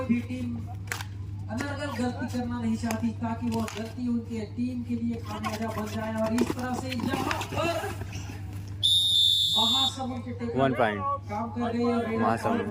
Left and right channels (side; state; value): both; identical; correlation 1.00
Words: भी टीम अनर्गल गलती करना नहीं चाहती ताकि वो गलती उनके टीम के लिए खामियाजा बन जाए और इस तरह से यहाँ पर महासमुंद के टेकल 1 पॉइंट काम कर रही है। महासमुंद